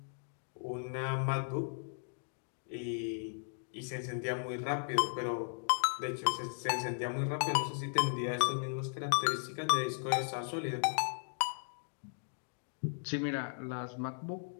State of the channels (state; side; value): silent; right; digital silence